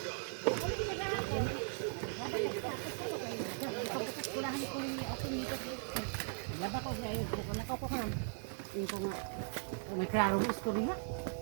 May klaro gusto niya.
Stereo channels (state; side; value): silent; left; 52 dB below the other